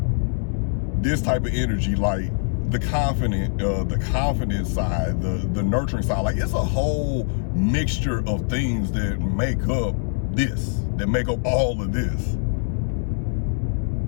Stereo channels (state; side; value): silent; right; 63 dB below the other